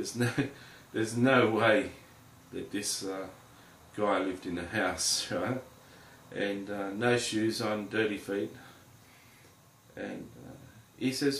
no way that this guy lived in a house, right? And no shoes on, dirty feet. And he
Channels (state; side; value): identical; both; correlation 1.00